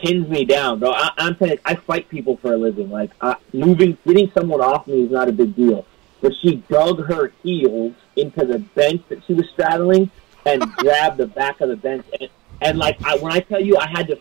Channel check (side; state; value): left; quieter; 22.2 dB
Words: me down, bro. I'm saying, I fight people for a living. Like, getting someone off me is not a big deal. But she dug her heels into the bench that she was straddling and grabbed the back of the bench. And like, when I tell you, I had to,